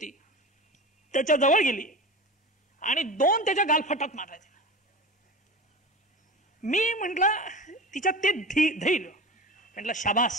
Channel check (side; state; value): both; normal; correlation 0.31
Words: त्याच्या जवळ गेली आणि 2 त्याच्या गालफटात मारल्या. मी म्हटलं तिच्या ते धैर्य, म्हटलं